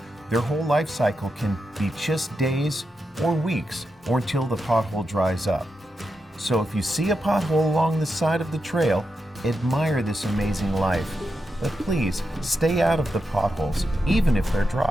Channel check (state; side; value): normal; both; correlation 0.87